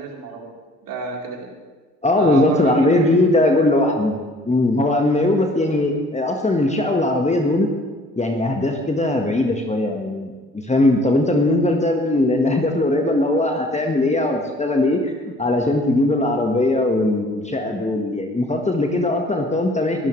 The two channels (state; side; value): normal; both; correlation 0.55